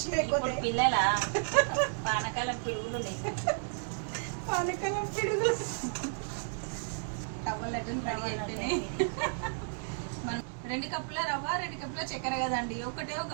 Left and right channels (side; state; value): left; silent; digital silence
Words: లేకపోతే పిల్లల పానకాలం పిడుగులు ఉన్నాయి. పానకాలం పిడుగులు రవ్వ లడ్డూలు రెడీ అయిపోయినాయి. మనం 2 కప్పుల రవ్వ 2 కప్పుల చక్కెర కదండి.